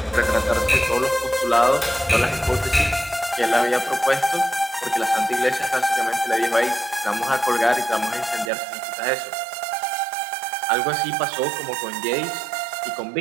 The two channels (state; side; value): drops out; left; at 8.5 s